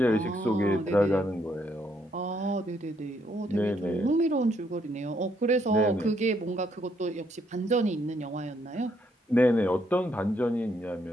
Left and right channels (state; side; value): normal; both; correlation 0.72